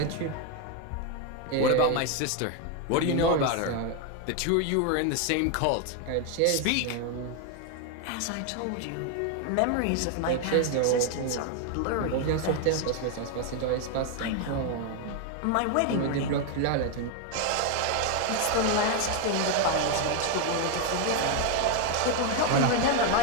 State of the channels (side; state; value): both; different; correlation 0.01